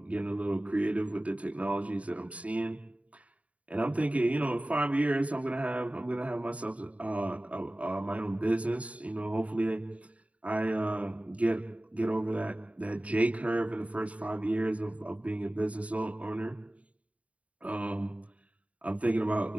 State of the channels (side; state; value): left; late; 0.067 ms